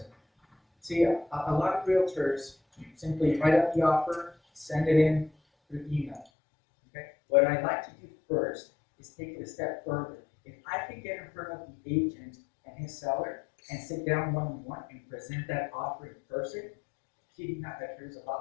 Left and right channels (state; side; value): drops out; right; at 6.2 s